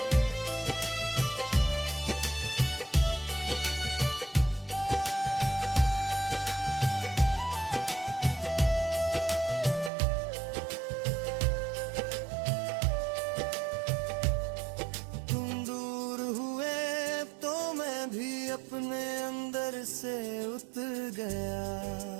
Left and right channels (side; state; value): left; drops out; at 9.9 s